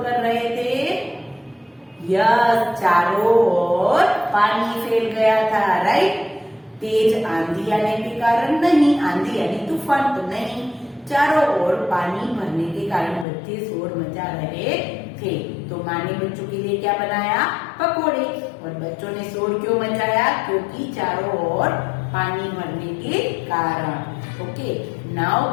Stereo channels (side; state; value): right; drops out; at 13.2 s